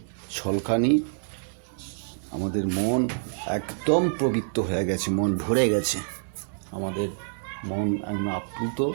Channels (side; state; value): left; silent; digital silence